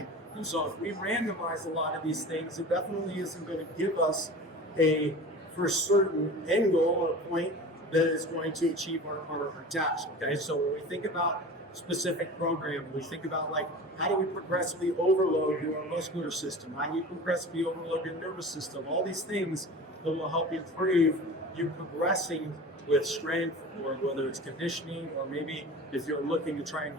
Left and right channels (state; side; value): normal; both; correlation 0.36